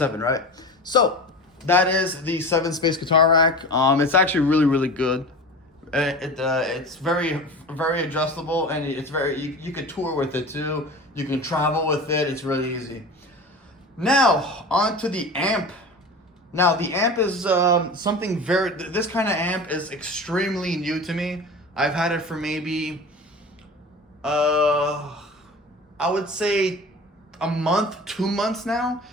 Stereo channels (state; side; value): normal; both; correlation 0.33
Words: right? So that is the 7-space guitar rack. It's actually really, really good. It's very, very adjustable, and it's you can tour with it too. You can travel with it. It's really easy. Now onto the amp. Now the amp is something this kind of amp is extremely new to me. I've had it for maybe I would say a month, 2 months now.